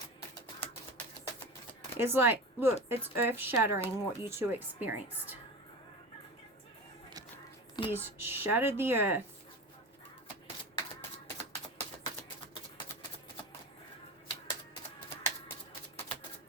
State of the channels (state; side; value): normal; both; correlation 0.28